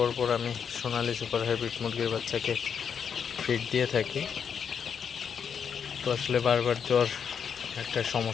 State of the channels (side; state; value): right; quieter; 7.1 dB